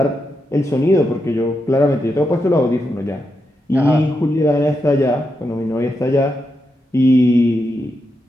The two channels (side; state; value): both; normal; correlation 0.85